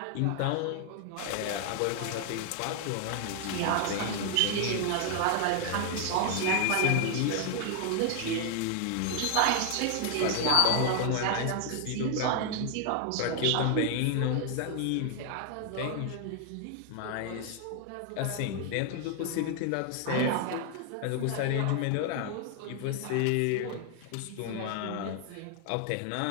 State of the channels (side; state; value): both; different; correlation 0.00